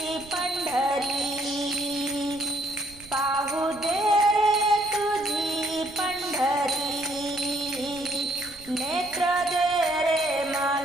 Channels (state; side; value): noise; right; rumble, 21 dB below the sound